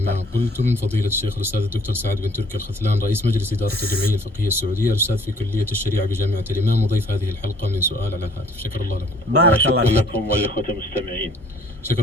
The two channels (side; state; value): both; normal; correlation 0.58